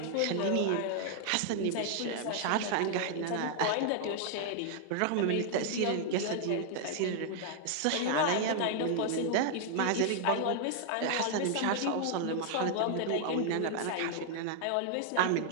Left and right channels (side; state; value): both; different; correlation 0.00